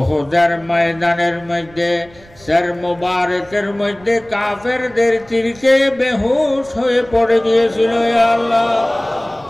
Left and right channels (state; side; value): noise; right; rumble, 25 dB below the sound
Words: ময়দানের মধ্যে সর মুবারকের মধ্যে কাফেরদের তীরকে বেহুশ হয়ে পড়ে গিয়েছিল। ইয়া